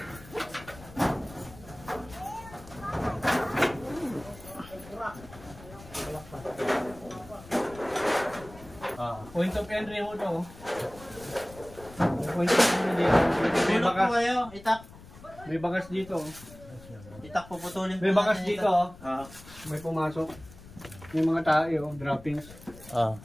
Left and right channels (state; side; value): noise; left; rumble, 19 dB below the sound